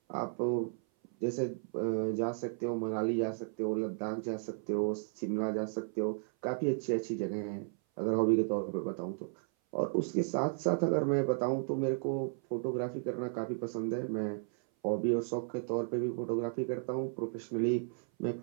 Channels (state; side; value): silent; left; 55 dB below the other